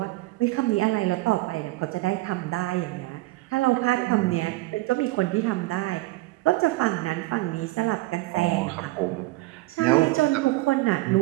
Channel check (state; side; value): quieter; left; 19.7 dB